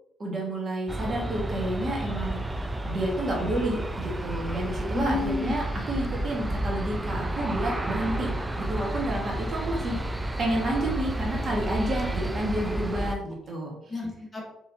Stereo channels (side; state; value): both; normal; correlation 0.81